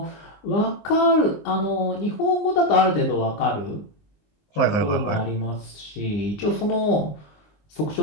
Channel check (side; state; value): right; late; 20 ms